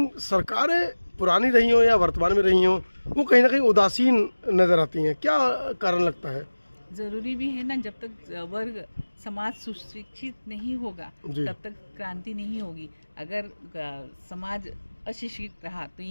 सरकारें पुरानी रही हो या वर्तमान में रही हो वो कहीं ना कहीं उदासीन नज़र आती हैं। क्या कारण लगता है? ज़रूरी भी है ना, जब तक वर्ग समाज सुशिक्षित नहीं होगा तब तक क्रांति नहीं होगी। अगर समाज अशिक्षित रहा तो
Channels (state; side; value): inverted; both; correlation -1.00